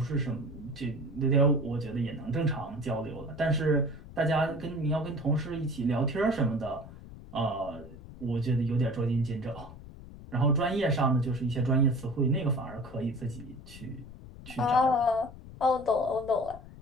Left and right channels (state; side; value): noise; left; rumble, 16 dB below the sound